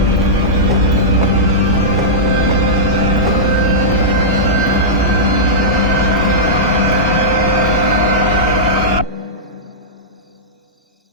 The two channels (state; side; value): normal; both; correlation -0.12